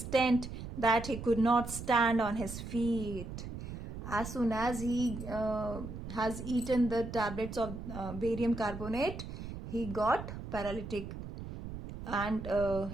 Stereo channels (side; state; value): right; noise; rumble, 9 dB below the sound